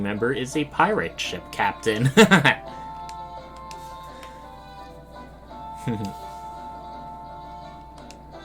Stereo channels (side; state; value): both; identical; correlation 1.00